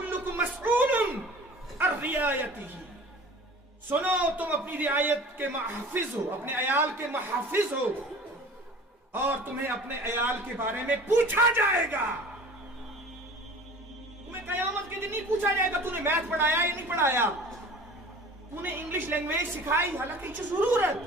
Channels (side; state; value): both; normal; correlation 0.43